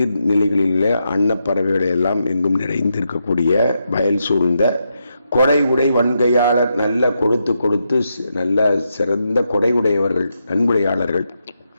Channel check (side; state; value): both; inverted; correlation -0.83